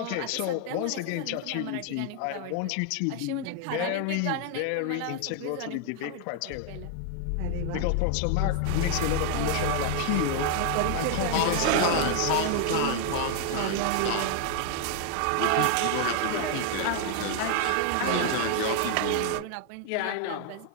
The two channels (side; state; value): both; different; correlation 0.00